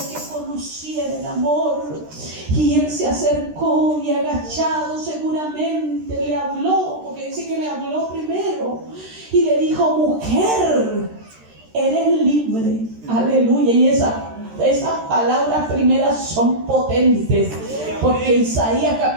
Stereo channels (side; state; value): left; late; 13 ms